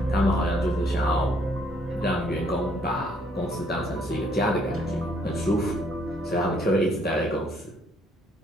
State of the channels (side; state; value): both; normal; correlation 0.66